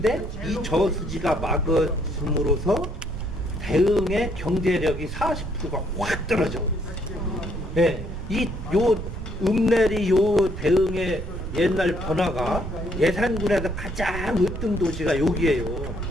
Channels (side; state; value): right; noise; rumble, 6 dB below the sound